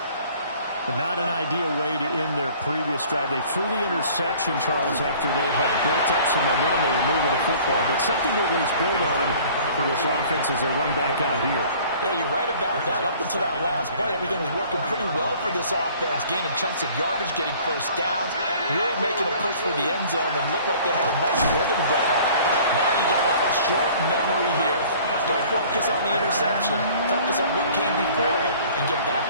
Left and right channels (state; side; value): inverted; both; correlation -0.51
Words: But not an ideal way to end their previous drive. They threw the interception, Charles, after they had built up some momentum. They were moving the football, but something to at least build on for this offense as they run back out here. Yeah, you're right about that. Up until that last play, everything was working pretty well for this offense, gaining chunks of yardage, getting first downs, really making a push for the end zone, and looked like they had a nice rhythm going. Now you got to have a short memory here. Don't focus on the interception. Focus on what came before it and get